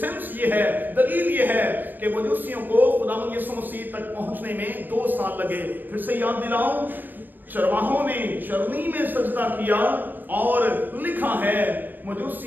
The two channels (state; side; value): late; left; 0.091 ms